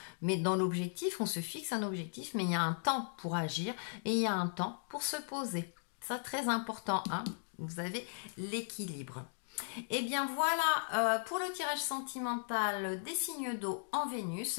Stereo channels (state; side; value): silent; right; digital silence